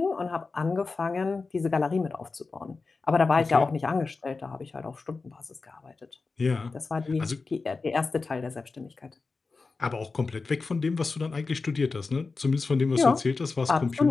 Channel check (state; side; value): quieter; right; 4.1 dB